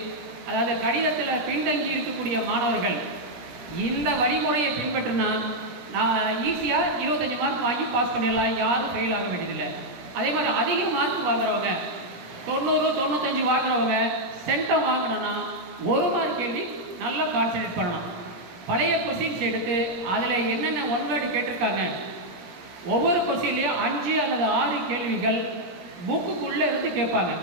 அதாவது கணிதத்தில் பின்தங்கி இருக்கக்கூடிய மாணவர்கள் இந்த வழிமுறையை பின்பற்றினா நான் ஈஸியாக 25 மார்க் வாங்கி பாஸ் பண்ணிடலாம், யாரும் ஃபெயில் ஆக வேண்டியதில்லை. அதே மாதிரி அதிக மார்க் வாங்குறவங்க 90, 95 வாங்குறவங்க சென்டம் வாங்கணும்னா 1 மார்க் கேள்வி நல்லா கான்சன்ட்ரேட் பண்ணணும். பழைய கொஸ்டின்ஸ் எடுத்து அதில் என்னென்ன ஒன் வேர்டு கேட்டிருக்காங்க, ஒவ்வொரு கொஸ்டின்லேயும் 5 அல்லது 6 கேள்விகள் புக்குக்குள்ளே இருந்து கேட்பாங்க.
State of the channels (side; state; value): left; late; 17 ms